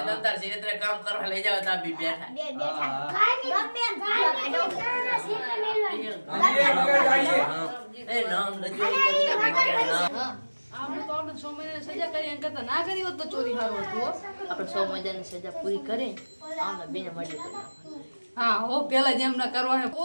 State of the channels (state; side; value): inverted; both; correlation -1.00